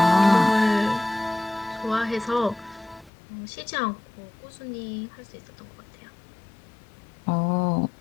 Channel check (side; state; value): right; drops out; at 3.1 s